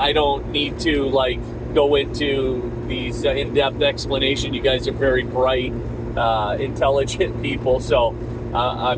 don't need to like go into these in-depth explanation. You guys are very bright, intelligent people, so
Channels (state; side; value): identical; both; correlation 1.00